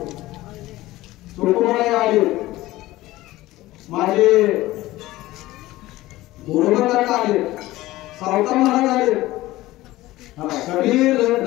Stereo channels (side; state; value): right; quieter; 17.3 dB